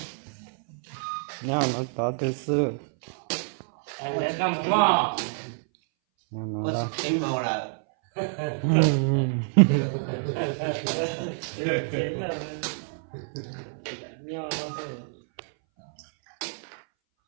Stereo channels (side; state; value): left; silent; 60 dB below the other